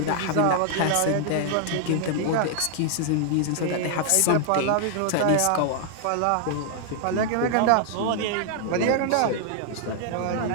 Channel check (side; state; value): both; different; correlation -0.01